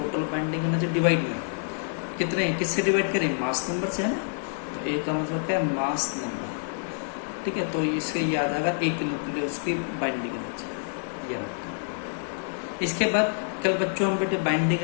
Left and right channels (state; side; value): silent; right; digital silence